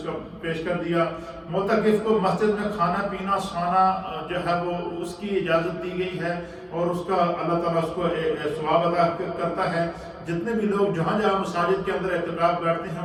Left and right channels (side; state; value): both; identical; correlation 1.00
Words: کا پیش کر دیا۔ معتکف کو مسجد میں کھانا پینا سونا جو ہے وہ اس کی اجازت دی گئی ہے، اور اس کا اللہ تعالیٰ اس کو ثواب ادا کرتا ہے۔ جتنے بھی لوگ جہاں مساجد کے اندر اعتکاف بیٹھتے